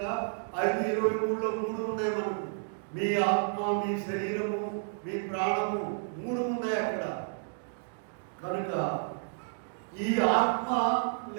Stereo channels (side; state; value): left; silent; digital silence